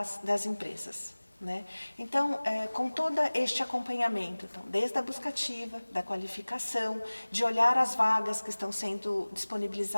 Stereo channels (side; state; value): both; inverted; correlation -1.00